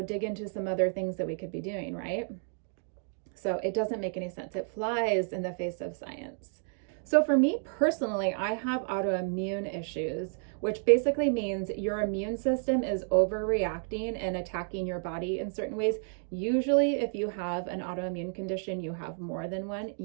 dig into some other things that we could be doing, right? So it doesn't make any sense. It flies in the face of science. So for me personally, I have autoimmune issues, which basically means your immune system is overreacting and attacking your body in certain ways. Usually, if you have an autoimmune condition, you have more than one.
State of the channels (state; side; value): silent; left; 57 dB below the other